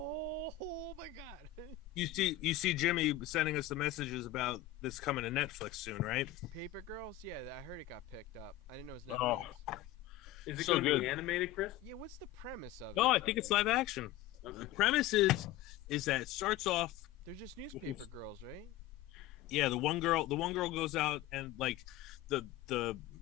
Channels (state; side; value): quieter; right; 13.6 dB